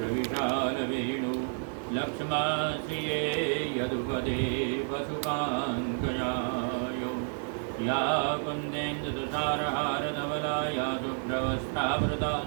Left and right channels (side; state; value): left; silent; 55 dB below the other